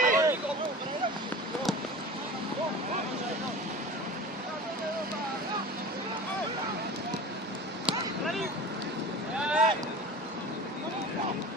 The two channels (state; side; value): normal; both; correlation 0.35